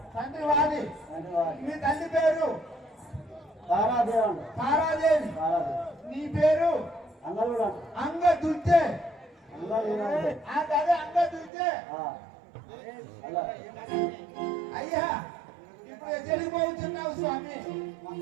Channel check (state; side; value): drops out; left; at 11.5 s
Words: తండ్రి వాలి. మీ తల్లి పేరు తారాదేవి. నీ పేరు అంగదుర్జే. అదే అంగదుర్జే. అయ్యా ఇప్పుడు ఎక్కడికి పోతున్నావు స్వామి?